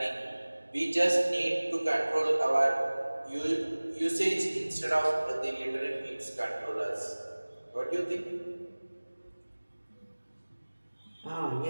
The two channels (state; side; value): inverted; both; correlation -1.00